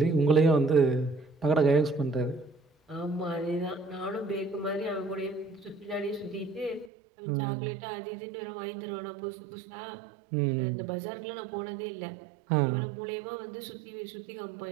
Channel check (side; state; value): left; drops out; at 6.9 s